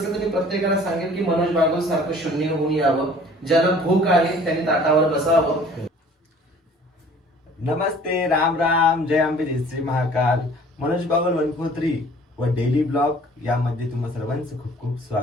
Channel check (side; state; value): both; normal; correlation 0.51